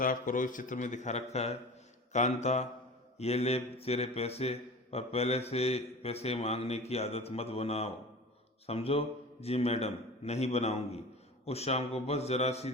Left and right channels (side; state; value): both; normal; correlation 0.36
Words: करो, इस चित्र में दिखा रखा है। कांता, ये ले तेरे पैसे, पर पहले से पैसे मांगने की आदत मत बनाओ, समझो। जी मैडम, नहीं बनाऊंगी। उस शाम को बस जरा सी